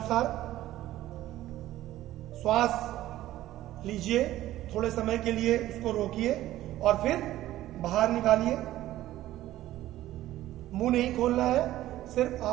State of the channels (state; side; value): quieter; left; 14.6 dB